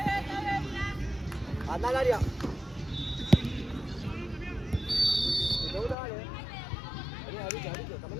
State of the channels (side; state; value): right; drops out; at 6.0 s